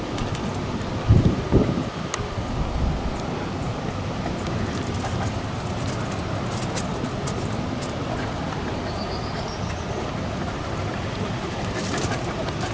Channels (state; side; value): identical; both; correlation 1.00